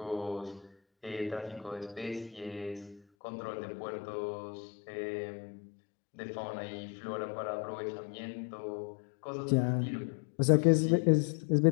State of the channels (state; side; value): drops out; right; at 3.0 s